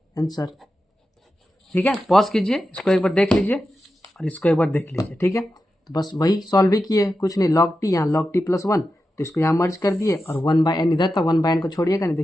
answer, ठीक है। पॉज कीजिए, इसको एक बार देख लीजिए और इसको एक बार देख लीजिए, ठीक है। तो बस वही सॉल्व ही किए, कुछ नहीं, log t यहाँ log t प्लस 1, तो इसको यहाँ मर्ज कर दिए, और 1 बाई n इधर था, 1 बाई n को छोड़िएगा नहीं,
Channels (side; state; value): both; normal; correlation 0.90